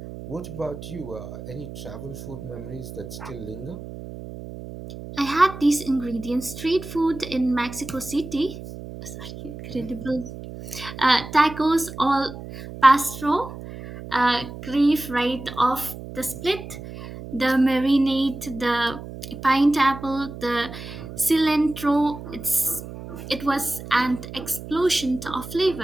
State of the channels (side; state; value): right; noise; hum, 12 dB below the sound